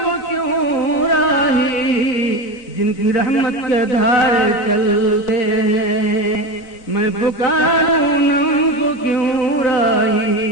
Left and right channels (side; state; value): right; late; 4.4 ms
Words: جن کی رحمت کے دھارے چلتے ہیں. میں پکاروں ان کو کیوں